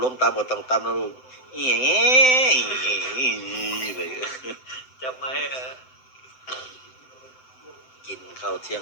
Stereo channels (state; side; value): late; right; 7.8 ms